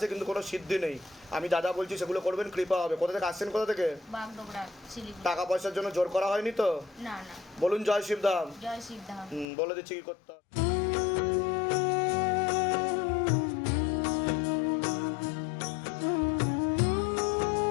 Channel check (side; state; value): right; drops out; at 9.5 s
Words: কিন্তু কোনো সিদ্ধি নেই। আমি যা যা বলছি সেগুলো করবেন, কৃপা হবে। কোথা থেকে আসছেন, কোথা থেকে? বাগডোগরা, শিলিগুড়ি। টাকা পয়সার জন্য জোর করা হয়নি তো? না না। বলুন জয় শিবধাম। জয় শিবধাম। বলে দিচ্ছি কি করতে হবে।